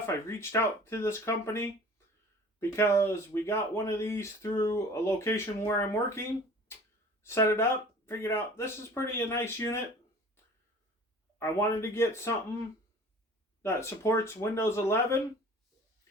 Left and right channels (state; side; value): normal; both; correlation 0.46